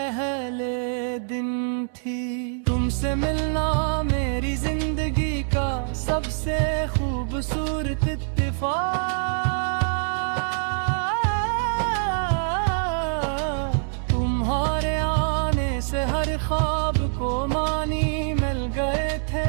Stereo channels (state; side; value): silent; left; 62 dB below the other